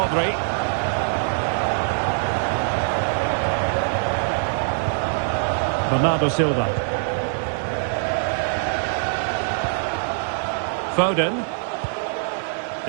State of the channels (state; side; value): silent; left; digital silence